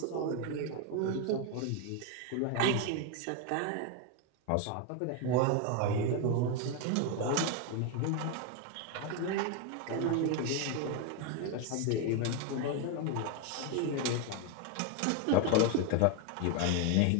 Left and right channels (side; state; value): both; different; correlation 0.01